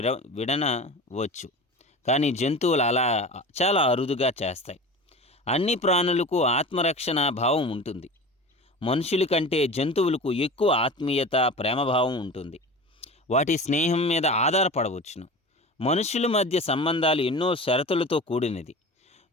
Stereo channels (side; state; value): both; normal; correlation 0.34